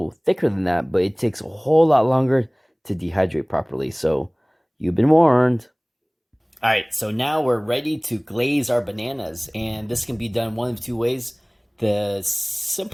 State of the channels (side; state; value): both; identical; correlation 1.00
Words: thicker than that, but it takes a whole lot longer to dehydrate properly, so you've been warned. Alright, so now we're ready to glaze our bananas, and this can be done one of two ways. The